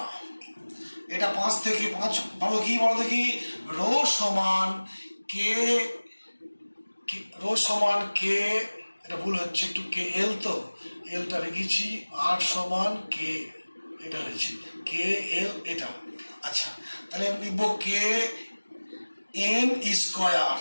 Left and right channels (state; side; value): inverted; both; correlation -1.00